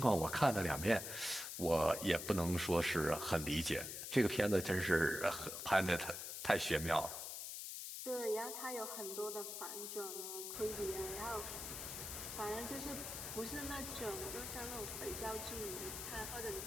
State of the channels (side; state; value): left; noise; hiss, 6 dB below the sound